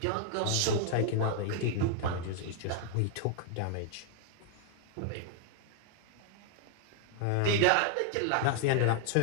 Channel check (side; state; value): both; different; correlation 0.00